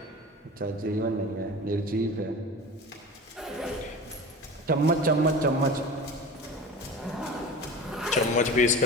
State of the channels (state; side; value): normal; both; correlation 0.34